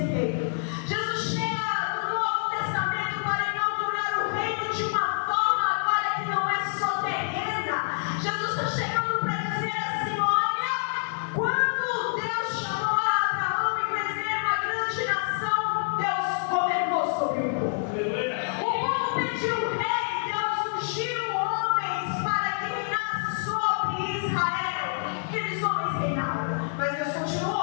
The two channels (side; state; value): right; silent; 60 dB below the other